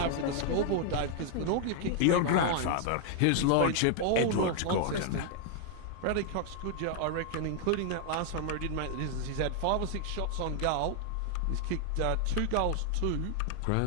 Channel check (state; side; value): different; both; correlation 0.00